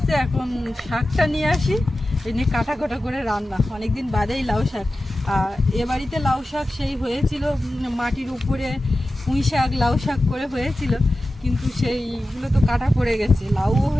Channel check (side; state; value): both; normal; correlation 0.94